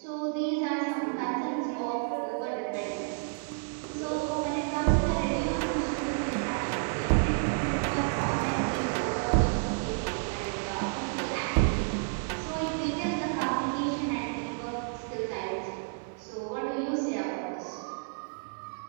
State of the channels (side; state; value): left; silent; 57 dB below the other